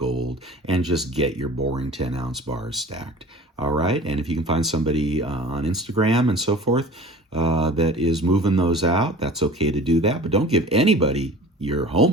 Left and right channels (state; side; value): normal; both; correlation 0.41